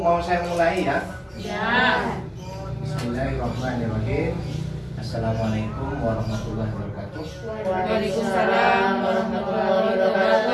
mau saya mulai ya? Ya. Bismillahirrahmanirrahim. Assalamualaikum warahmatullahi wabarakatuh. Waalaikumsalam warahmatullahi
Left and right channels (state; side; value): identical; both; correlation 1.00